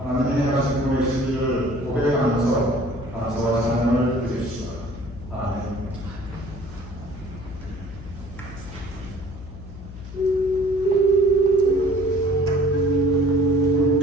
행하신 구원의 진리를 고백하면서 감사와 찬양을 드립시다. 아멘.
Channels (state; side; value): noise; left; hum, 13 dB below the sound